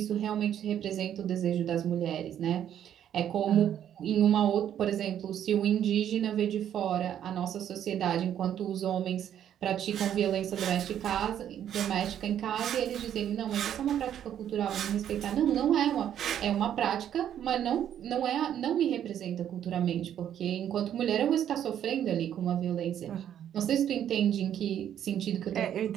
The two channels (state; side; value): quieter; left; 10.1 dB